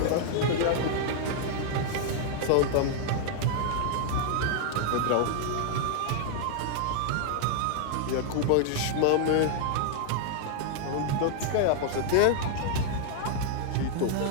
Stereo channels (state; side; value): different; both; correlation 0.00